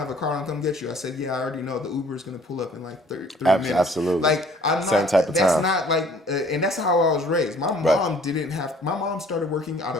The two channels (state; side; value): normal; both; correlation 0.55